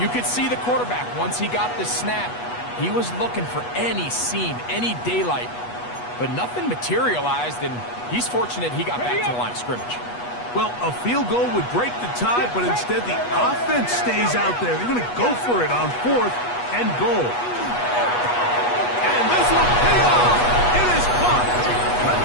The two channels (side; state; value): right; late; 8.2 ms